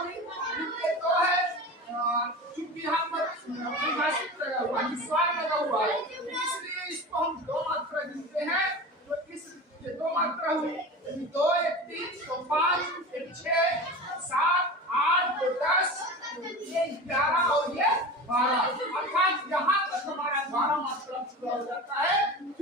इनके 2 है। चूंकि यहाँ पर परिभाषित लगा हुआ है, निस्वार लगा हुआ है, इसलिए इसको हम 2 मात्रा गिनते हैं। तो इस 2 मात्रा हुई, 2, 1, 3, तो 5, 1, 6, 7, 8, 2, 10, ये 11 और ये 12, अर्थात यहाँ तक हमारा 12 मात्रा पूरा हो जाता है।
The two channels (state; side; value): normal; both; correlation 0.31